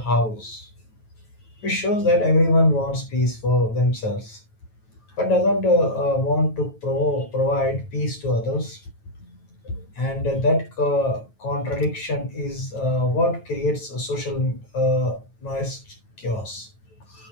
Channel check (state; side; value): late; right; 9.2 ms